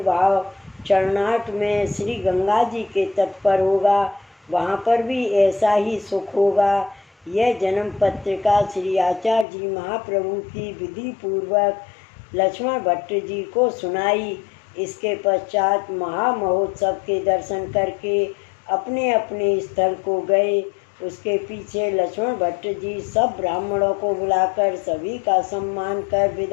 चरनाट में श्री गंगा जी के तट पर होगा, वहाँ पर भी ऐसा ही सुख होगा। यह जन्म पत्रिका श्री आचार्य जी महाप्रभु की विधि पूर्वक लक्ष्मण भट्ट जी को सुनाई। इसके पश्चात महामहोत्सव के दर्शन करके अपने अपने स्थल को गए। उसके पीछे लक्ष्मण भट्ट जी सब ब्राह्मणों को बुलाकर सभी का सम्मान कर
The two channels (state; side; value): drops out; right; at 9.5 s